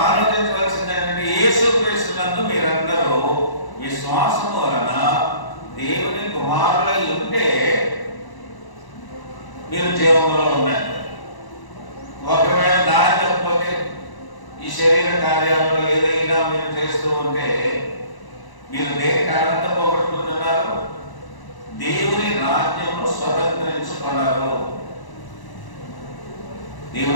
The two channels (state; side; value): late; right; 1.0 ms